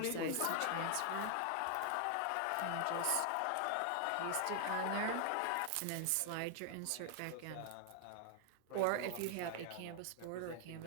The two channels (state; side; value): different; both; correlation 0.00